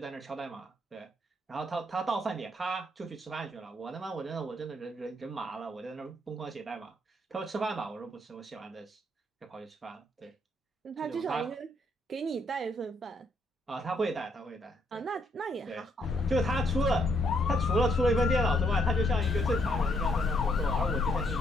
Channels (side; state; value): both; normal; correlation 0.72